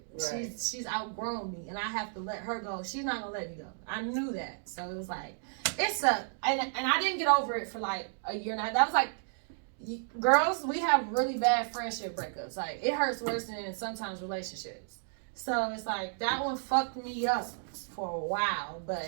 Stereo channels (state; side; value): silent; left; digital silence